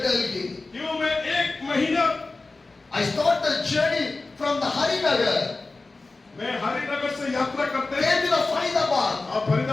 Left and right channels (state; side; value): quieter; right; 3.5 dB